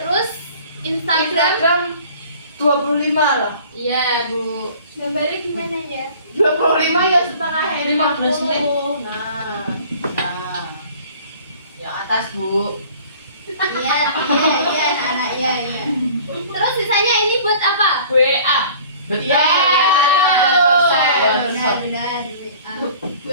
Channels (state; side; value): inverted; both; correlation -0.48